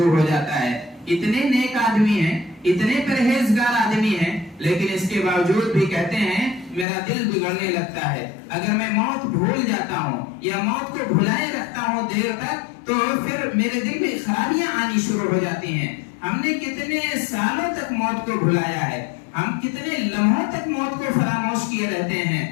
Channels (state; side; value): drops out; right; at 6.9 s